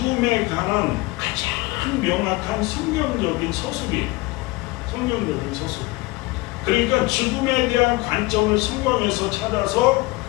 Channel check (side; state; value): right; quieter; 22.0 dB